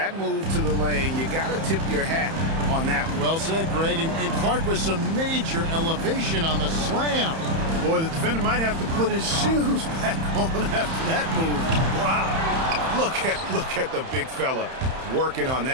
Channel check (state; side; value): late; left; 31 ms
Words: move to the lane, you got to tip your hat on that one. Well said, Greg. And Clark with some major elevation on the slam. Boy, the defender might have to put his shoes back on after that move. Wow. Look at the big fella working on